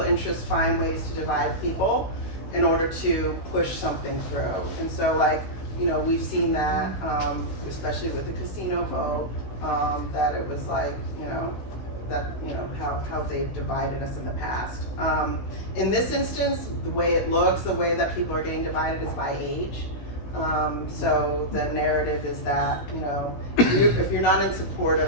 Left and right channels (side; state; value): right; late; 16 ms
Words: interests find ways to divide people in order to push something through. And so we've seen that, especially with the casino vote, that it was how they've divided us in the past. In this instance, the way it looks, the way that people are getting divided is by age. So the narrative is that, if you're not in support